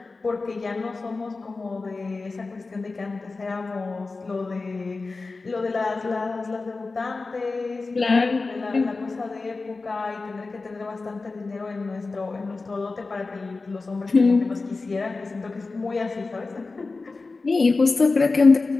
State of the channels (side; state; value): right; quieter; 3.8 dB